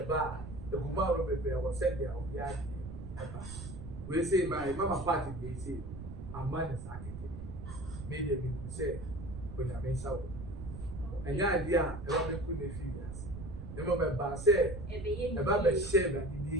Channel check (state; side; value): noise; right; rumble, 10 dB below the sound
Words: bar, the woman will be was said there will be we say my mama party they say a man is acting. Made them say when I mean so. And the idea about couldn't feel yes. The moment say about the shame that